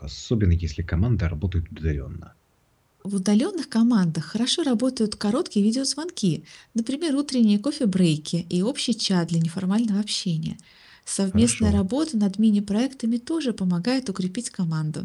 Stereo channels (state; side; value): identical; both; correlation 1.00